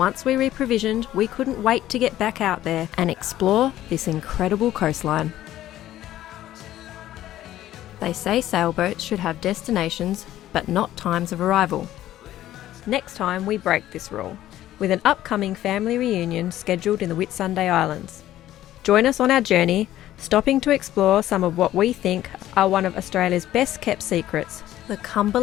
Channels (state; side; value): quieter; right; 13.5 dB